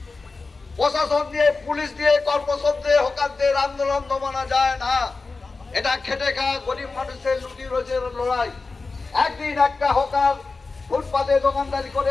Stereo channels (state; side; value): quieter; right; 3.9 dB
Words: প্রশাসন দিয়ে পুলিশ দিয়ে কর্পোরেশন দিয়ে হকারদের আন্দোলন দমানো যায় না। এটা খেটে খাওয়া গরিব মানুষের লুটি রোজের লড়াই। একদিন একটা হকার ফুটপাতে দোকানদারি করে